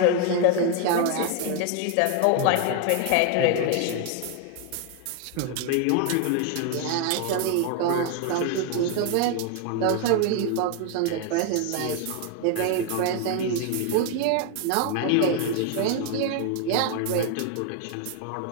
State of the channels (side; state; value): both; different; correlation 0.00